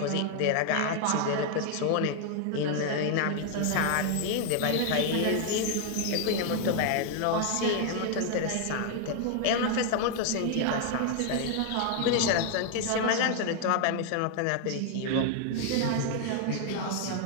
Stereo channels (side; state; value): both; different; correlation 0.00